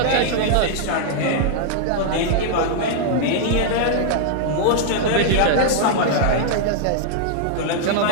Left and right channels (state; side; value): different; both; correlation -0.01